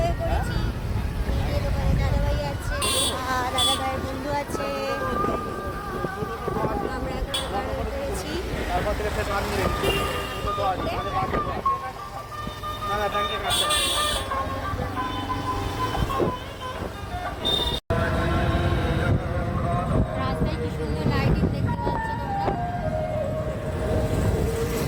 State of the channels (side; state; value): both; identical; correlation 1.00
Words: হয়ে পড়েছি। এই দোকানে দাদা ভাই আছে আর দাদা ভাইয়ের বন্ধু আছে। আমরা এখন বার হয়ে পড়েছি। রাস্তায় কি সুন্দর লাইটিং দেখতে পাচ্ছ তোমরা।